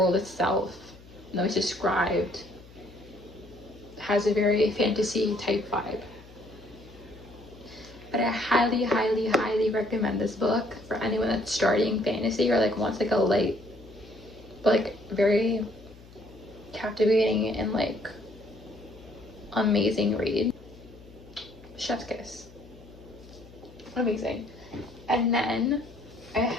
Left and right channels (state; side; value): noise; left; hum, 21 dB below the sound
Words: itself though it's described, has a very fantasy type vibe. But I highly, highly, highly recommend this book for anyone that's starting fantasy or like wants like a light, but like very captivating and like amazing read. Chef's kiss. Amazing. And then